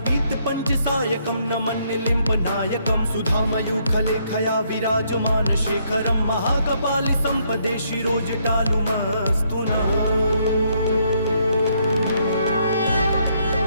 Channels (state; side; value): inverted; both; correlation -0.72